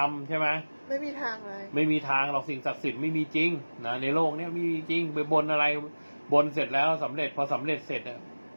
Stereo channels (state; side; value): inverted; both; correlation -1.00